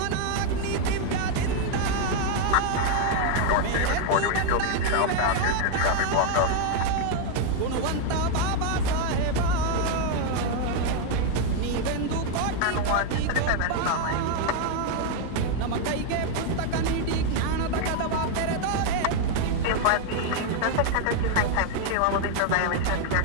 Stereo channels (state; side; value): different; both; correlation 0.00